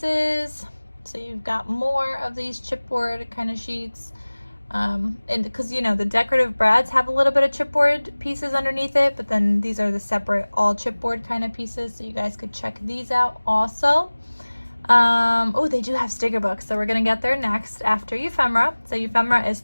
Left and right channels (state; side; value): inverted; both; correlation -1.00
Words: so you've got more of these chipboard kind of sheets. And because you know the decorative brads have a little bit of chipboard pieces underneath it, but then these are the separate all chipboard kind of pieces, so you guys could check these out also. Oh, they do have sticker books, so we're gonna get there next after ephemera. So ephemera is